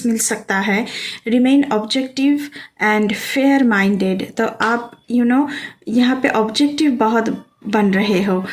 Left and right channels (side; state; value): both; identical; correlation 1.00